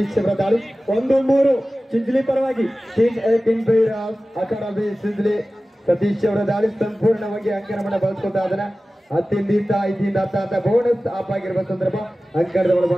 ಅವರ ದಾಳಿ 1-3 ಚಿಂಚಲಿ ಪರವಾಗಿ ಅಕಾಡೆಮಿ ಚಿಂಚಲಿ ಸತೀಶ್ ಅವರ ದಾಳಿ ಸಂಪೂರ್ಣವಾಗಿ ಅಂಕಣವನ್ನು ಬಳಸ್ಕೊತಾ ಅದನ್ನ 10-5 ಅಂತ ಬೋನಸ್ ಆಪ್ ಆಗಿರುವ ಸಂದರ್ಭ ಅಂಕಣದ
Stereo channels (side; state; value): both; normal; correlation 0.96